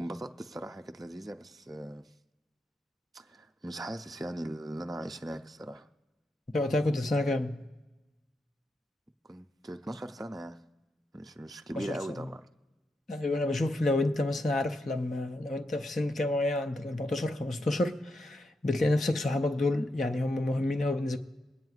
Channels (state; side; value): normal; both; correlation 0.84